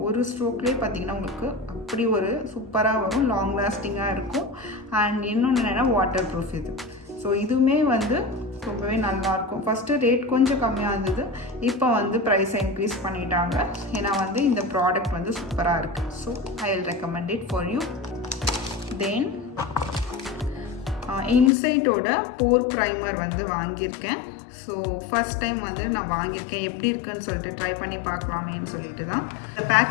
ஒரு ஸ்ட்ரோக்லேயே பார்த்திங்கன்னா உங்களுக்கு அப்படி ஒரு சூப்பராக வரும், லாங் லாஸ்டிங்காக இருக்கும். அண்ட் இன்னொன்று என்னென்னா வாட்டர் ப்ரூஃப் இது. ஸோ இதுவுமே வந்து ரொம்பவே நல்லாயிருக்கும். ஃபஸ்ட்டு ரேட் கொஞ்சம் கம்மியாக இருந்தது, இப்போ வந்து ப்ரைஸை இன்க்ரீஸ் பண்ணிட்டாங்க. ஏன்னா வந்து இந்த ப்ராடக்ட் வந்து சூப்பராக இருக்குது. So I will recommend it for you. Then இன்சைட்டோட போர் ப்ரைமர் வந்து வாங்கியிருக்கேன். ஸோ ஃபஸ்ட் டைம் வந்து நான் வாங்கியிருக்கேன். எப்படி இருக்குன்னு சொல்லிட்டு ட்ரை பண்ணி பார்க்கலாமேன்னு சொல்லிட்டு தான். இந்த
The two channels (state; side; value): drops out; right; at 21.5 s